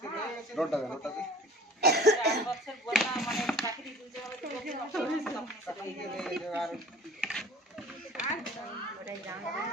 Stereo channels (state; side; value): normal; both; correlation 0.46